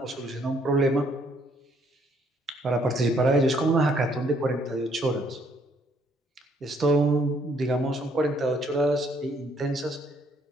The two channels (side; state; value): both; normal; correlation 0.67